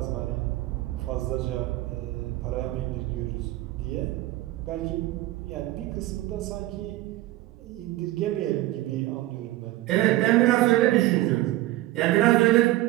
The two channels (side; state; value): left; quieter; 17.0 dB